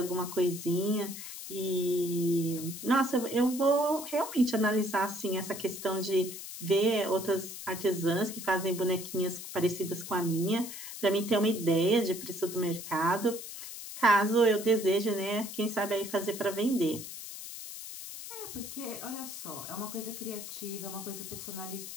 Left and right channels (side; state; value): left; noise; hiss, 10 dB below the sound